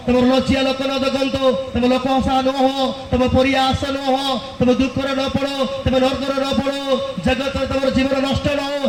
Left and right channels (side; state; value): both; identical; correlation 1.00